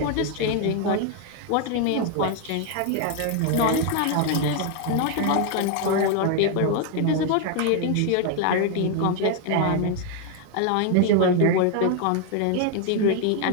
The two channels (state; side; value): different; both; correlation 0.01